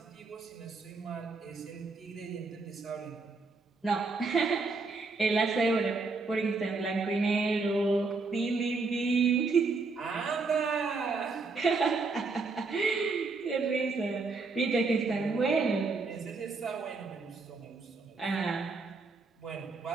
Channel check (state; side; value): quieter; left; 4.0 dB